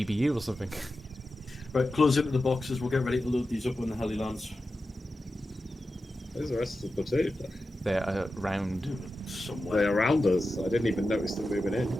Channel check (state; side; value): normal; both; correlation 0.92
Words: or something. Right, close into the boxes, we'll get ready to load these up when the heli lands. Where's the rest of the platoon? They're around somewhere. They're around us. I didn't even notice them moving in.